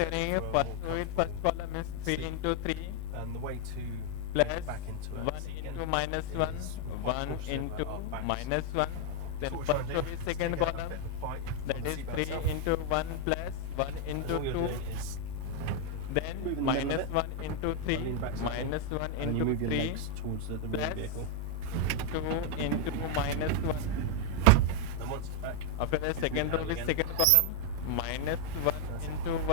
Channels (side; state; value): both; different; correlation 0.00